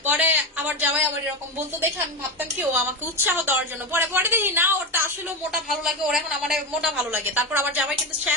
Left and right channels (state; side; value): normal; both; correlation 0.16